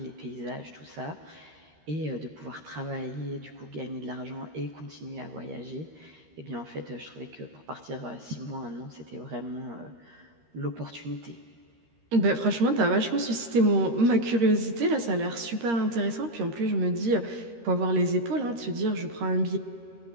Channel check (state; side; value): late; left; 13 ms